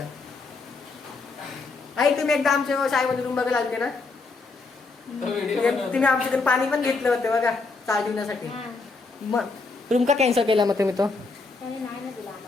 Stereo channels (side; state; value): right; quieter; 4.0 dB